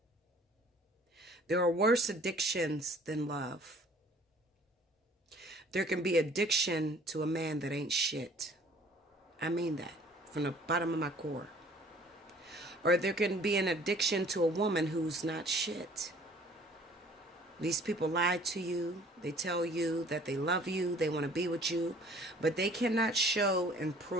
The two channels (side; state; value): both; normal; correlation 0.53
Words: There are worse addictions than love. There can be addiction to a man that ain't shit. I mean that from the bottom of my core. Or there can be an addiction to a woman who's not shit. These people lie to you. They tell you that they love you. They want to be with you. But they cannot show and